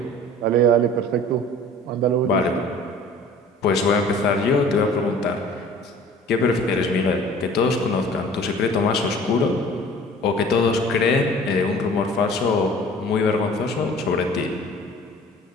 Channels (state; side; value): normal; both; correlation 0.47